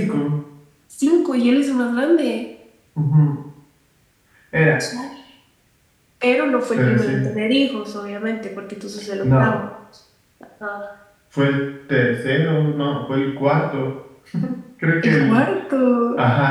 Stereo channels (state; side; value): identical; both; correlation 1.00